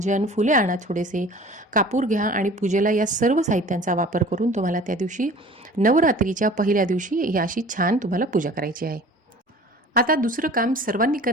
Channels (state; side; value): normal; both; correlation 0.45